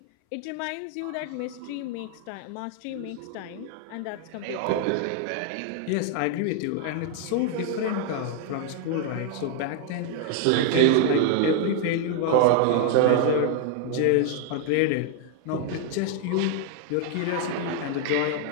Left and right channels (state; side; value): different; both; correlation 0.00